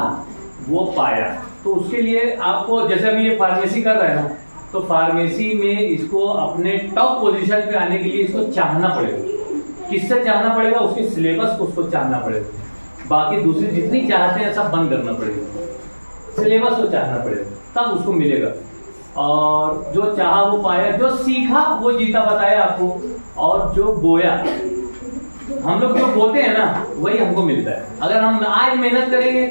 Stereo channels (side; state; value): both; inverted; correlation -1.00